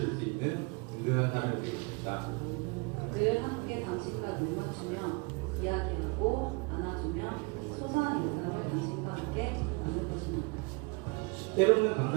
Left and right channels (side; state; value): left; quieter; 30.2 dB